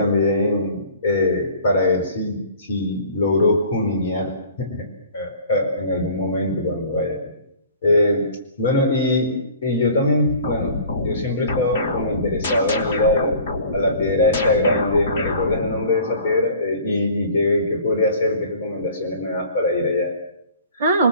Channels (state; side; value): inverted; both; correlation -0.48